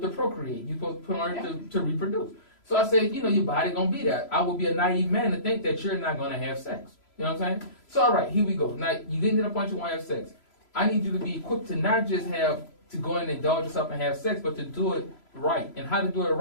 to procreate. You supposed to put on earth to reproduce. So I said, you know, your body gonna be that. I would be a naive man to think that you're not gonna have sex. You know what I'm saying? So all right, here we go. Now you getting to the point you want to have sex. I need you to be equipped to not just have to go in and indulge yourself and have sex, but to do it right. And how to do it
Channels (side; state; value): right; late; 3.0 ms